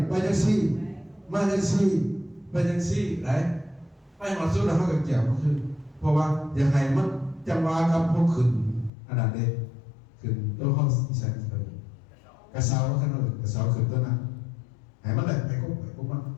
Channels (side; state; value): right; drops out; at 8.9 s